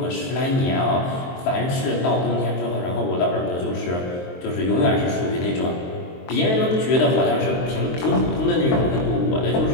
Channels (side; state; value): right; late; 23 ms